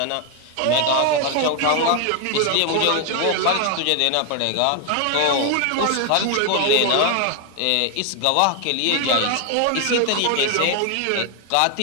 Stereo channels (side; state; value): both; different; correlation 0.01